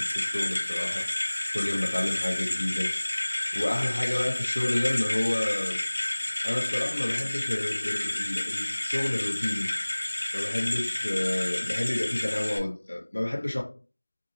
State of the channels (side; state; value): both; inverted; correlation -1.00